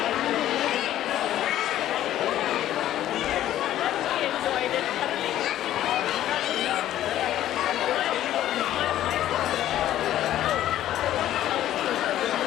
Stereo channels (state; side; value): quieter; right; 12.7 dB